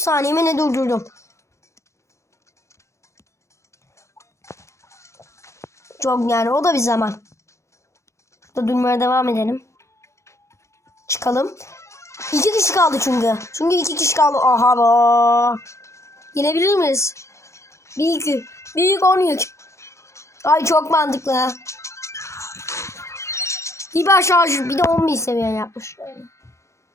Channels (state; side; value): late; right; 0.14 ms